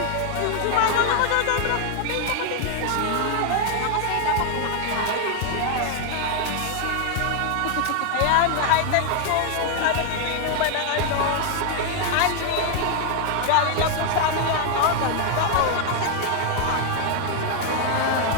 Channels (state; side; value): different; both; correlation 0.00